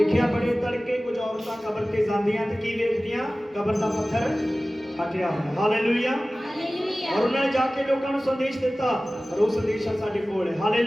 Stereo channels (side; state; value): both; normal; correlation 0.97